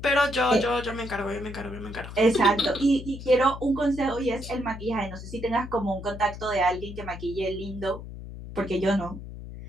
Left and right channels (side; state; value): left; noise; hum, 11 dB below the sound